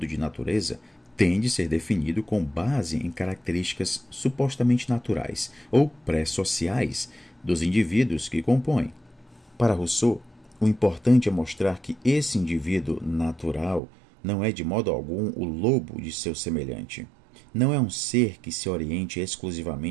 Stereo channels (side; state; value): left; drops out; at 13.8 s